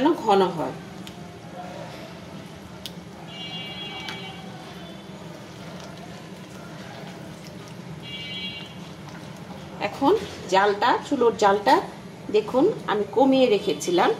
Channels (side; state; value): both; identical; correlation 1.00